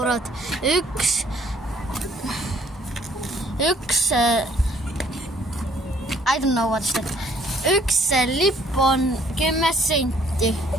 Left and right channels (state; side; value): normal; both; correlation 0.61